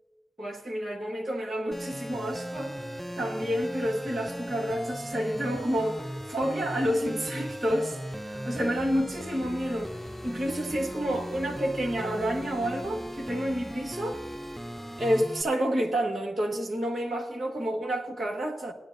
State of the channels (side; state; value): both; normal; correlation 0.91